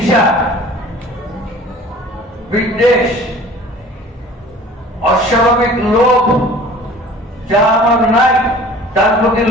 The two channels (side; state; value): both; normal; correlation 0.46